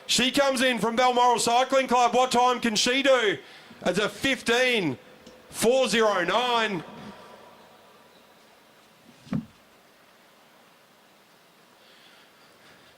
she comes in from Balmoral Cycling Club. What time can she do? It's a 15.409.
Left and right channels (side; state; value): both; identical; correlation 1.00